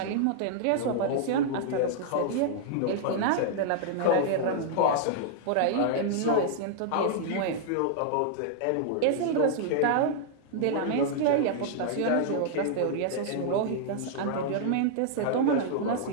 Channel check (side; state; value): both; different; correlation -0.01